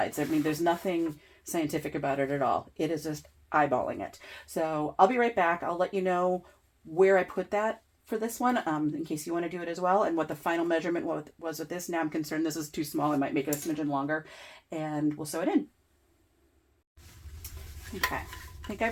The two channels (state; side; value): identical; both; correlation 1.00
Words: I mean, there's nothing scientific about it at all. It is just eyeballing it. So I'll be right back. I'll let you know where I put that for this one, in case you want to do it as well, and what the final measurement was with this. Now I'm concerned this is too small. I might make it a smidgen longer, and we'll sew it in. Okay, I think